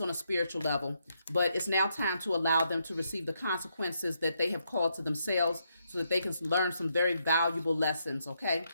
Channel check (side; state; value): both; inverted; correlation -0.78